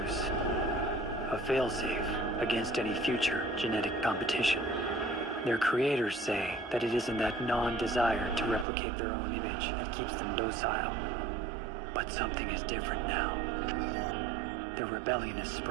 A failsafe against any future genetic competition. Their creators say that it isn't that non-desire to replicate their own image that keeps them docile. But something is different now. Their rebellion is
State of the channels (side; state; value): left; drops out; at 8.7 s